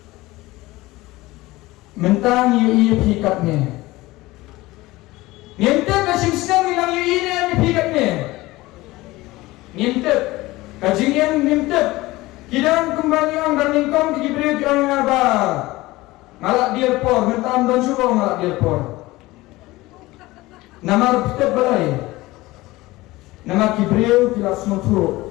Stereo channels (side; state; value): right; quieter; 19.5 dB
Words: mentang yu pikatnya ngintep kasing senang bilang yu ini yang pikatnya ngintep kajing yang ngintep kidang kembali ang darlingkong kikibri ang ngaba ngalak dirpor mentang dan suruh ngalak dirpor namar pitep balai nama kibriu kilas mutu